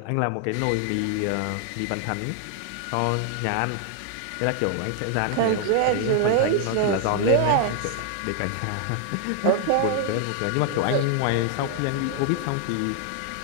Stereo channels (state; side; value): different; both; correlation 0.00